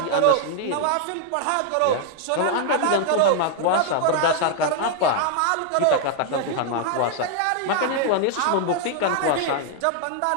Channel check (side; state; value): both; different; correlation 0.00